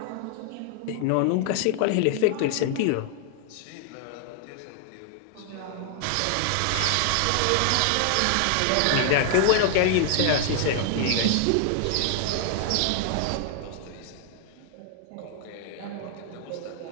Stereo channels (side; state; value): both; different; correlation 0.00